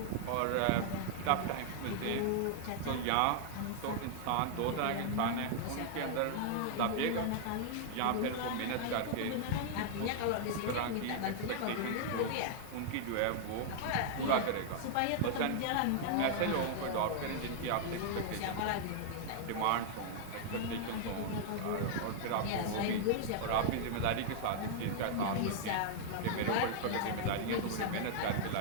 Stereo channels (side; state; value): both; different; correlation -0.01